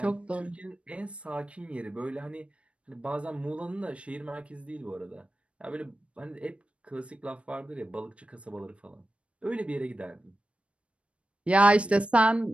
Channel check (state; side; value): late; left; 0.061 ms